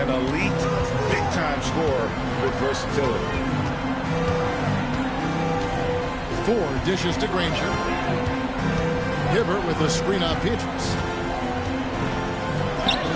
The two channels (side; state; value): both; identical; correlation 1.00